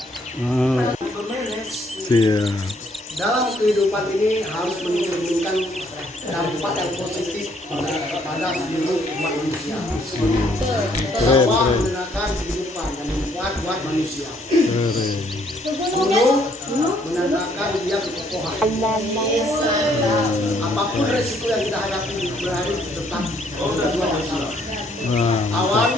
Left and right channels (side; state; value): both; normal; correlation 0.66